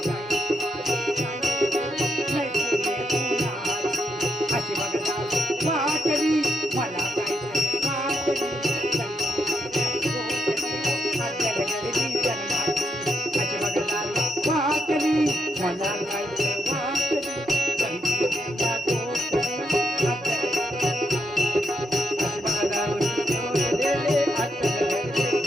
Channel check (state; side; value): normal; both; correlation 0.80